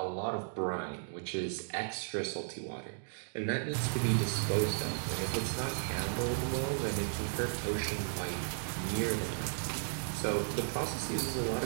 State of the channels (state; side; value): silent; left; digital silence